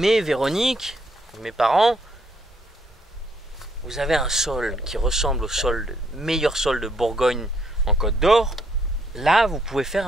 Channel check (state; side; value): normal; both; correlation 0.71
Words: Véronique, mes parents, vous avez un sol qui ressemble au meilleur sol de Bourgogne en Côte d'Or. Là, vous pouvez faire